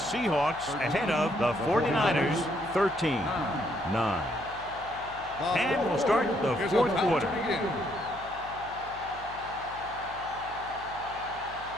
ahead of the 49ers 13-9. And we'll start the fourth quarter.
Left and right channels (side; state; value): left; noise; hum, 19 dB below the sound